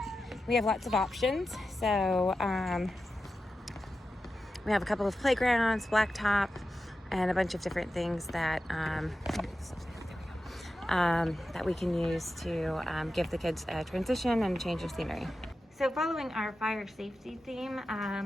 we have lots of options. So we have a couple of playgrounds, blacktop, and a bunch of different things that that we can use to give the kids a transition and change of scenery. So following our fire safety theme,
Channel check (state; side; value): normal; both; correlation 0.92